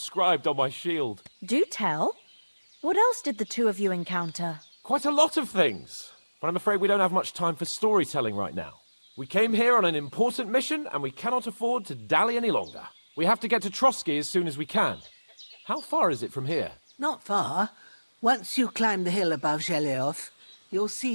on my shield. Do tell. What else did the two of you encounter? Quite a lot of things, but I'm afraid we don't have much time for storytelling right now. We came here on an important mission, and we cannot afford to dally any longer. We have to get to Trotsky as soon as we can. How far is it from here? Not far. Once you climb the hill above Zheleov, you'll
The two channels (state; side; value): inverted; both; correlation -1.00